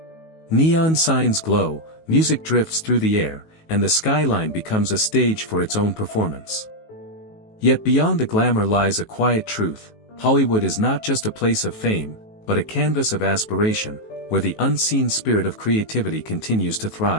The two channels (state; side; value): late; right; 19 ms